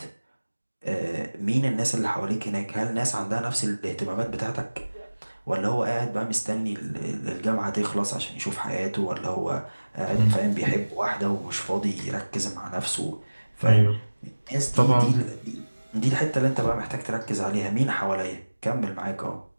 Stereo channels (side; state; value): both; inverted; correlation -1.00